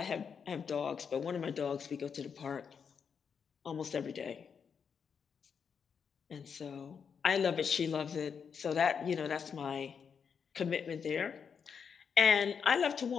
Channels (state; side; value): quieter; right; 6.6 dB